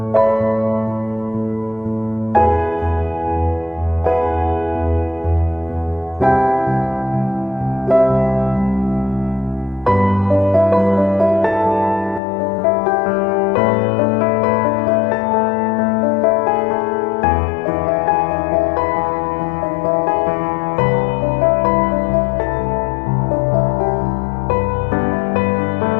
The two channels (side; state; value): right; drops out; at 12.2 s